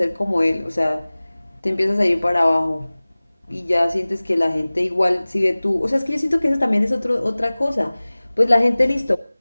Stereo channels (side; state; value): both; inverted; correlation -0.99